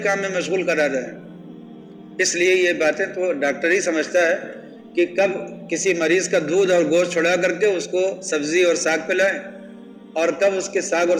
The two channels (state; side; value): identical; both; correlation 1.00